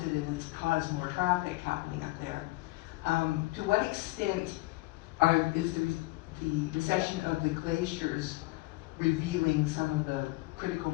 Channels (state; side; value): quieter; right; 21.8 dB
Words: and it's caused more traffic happening up there. To what extent is the recession of the glaciers revealing some of the critical